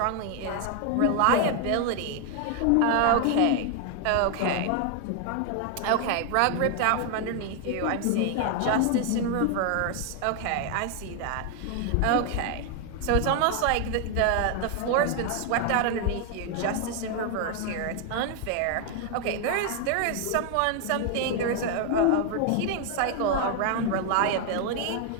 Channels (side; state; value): both; different; correlation 0.00